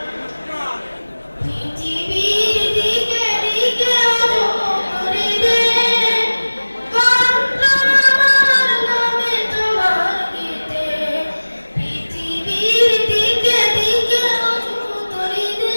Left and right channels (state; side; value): inverted; both; correlation -1.00